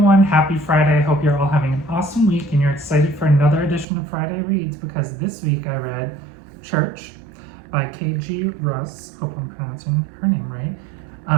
happy Friday. I hope you're all having an awesome week and you're excited for another edition of Friday Reads, because this week I read Church by K.G. Russ, hope I'm pronouncing her name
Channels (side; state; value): left; drops out; at 3.9 s